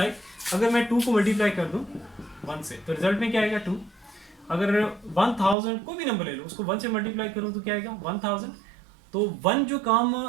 अगर मैं 2 को मल्टीप्लाई कर दूं 1 से तो रिजल्ट में क्या आएगा 2। अगर 1000 कोई भी नंबर ले लो उसको 1 से मल्टीप्लाई करूं तो क्या आएगा 1000। तो 1 जो काम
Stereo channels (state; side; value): drops out; left; at 5.6 s